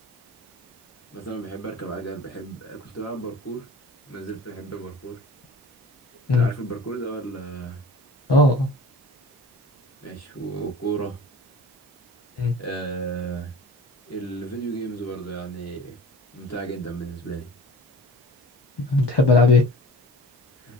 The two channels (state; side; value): normal; both; correlation 0.42